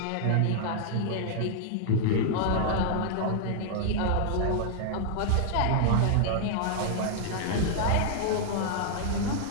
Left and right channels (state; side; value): different; both; correlation -0.01